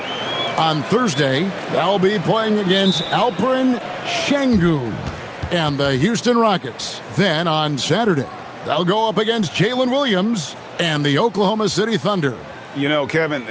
On Thursday, they'll be playing against Alperen Şengün and the Houston Rockets. Then on Saturday, they'll go up against Jalen Williams and the Oklahoma City Thunder. You know, Kevin,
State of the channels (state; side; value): identical; both; correlation 1.00